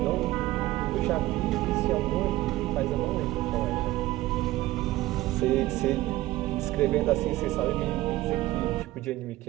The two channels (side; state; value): left; quieter; 16.9 dB